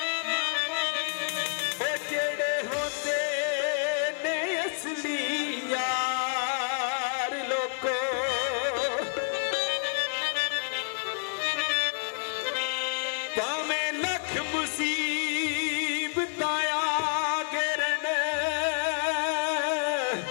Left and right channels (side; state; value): right; silent; 58 dB below the other